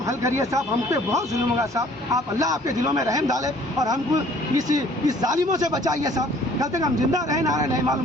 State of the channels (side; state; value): both; normal; correlation 0.56